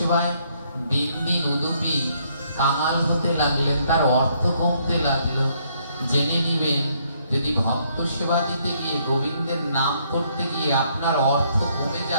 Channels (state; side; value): inverted; both; correlation -0.69